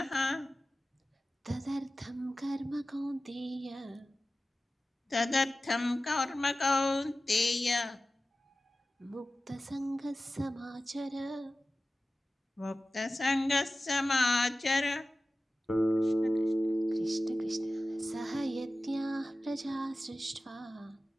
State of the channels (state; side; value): normal; both; correlation 0.95